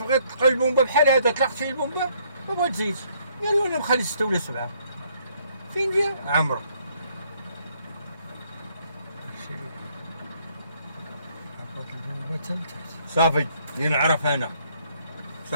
تلقى البومبه بحال هذا طلقت فيه البومبه ما بغات تزيد. قالوا انا مخلي 6 ولا 7 فين جا عمرو. هبط البومبة حتى لتحت. صافي اللي نعرف انا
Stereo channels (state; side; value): inverted; both; correlation -0.67